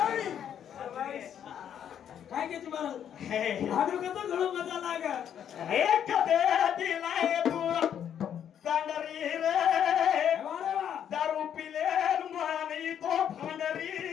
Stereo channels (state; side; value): quieter; right; 9.2 dB